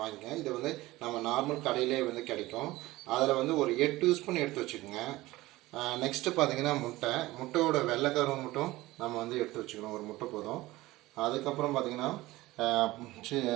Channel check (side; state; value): left; quieter; 18.6 dB